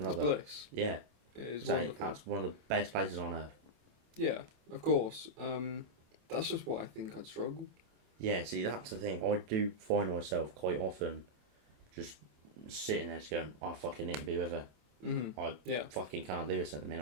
love It's that. bliss. Yeah, It is so wonderful. that's one of the best places on earth. Yeah, of course. That's just what I think I'd struggle. Yeah, see, that's the thing. I do find myself quite often just sitting there just going, I fucking need to be with her. I fucking can't do this at the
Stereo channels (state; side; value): late; left; 27 ms